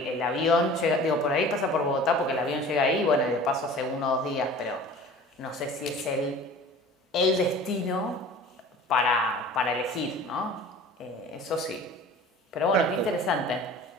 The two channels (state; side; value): normal; both; correlation 0.43